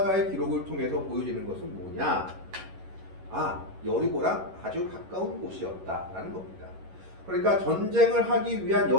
기록을 통해서 보여지는 것은 뭐냐? 여리고랑 아주 가까운 곳이었다라는 겁니다. 그러니까 전쟁을 하기 위한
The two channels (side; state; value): left; late; 11 ms